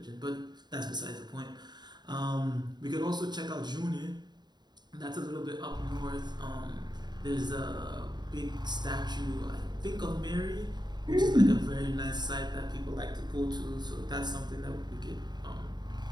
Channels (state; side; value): late; left; 0.21 ms